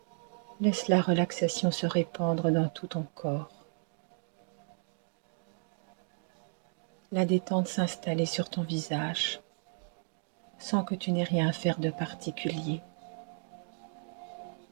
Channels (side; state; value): left; silent; 55 dB below the other